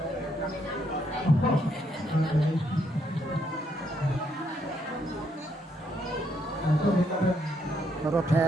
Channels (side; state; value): both; normal; correlation 0.73